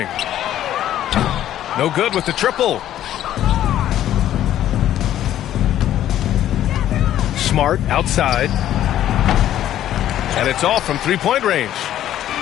No good with the triple. Smart outside. And it's all from three-point range.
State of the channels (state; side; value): quieter; right; 12.0 dB